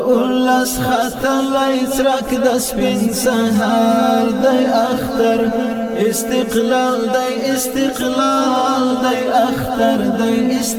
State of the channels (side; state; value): both; identical; correlation 1.00